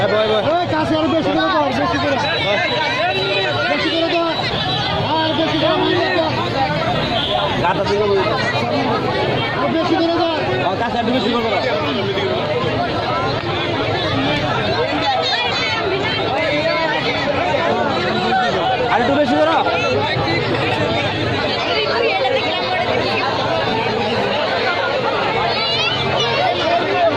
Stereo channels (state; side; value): identical; both; correlation 1.00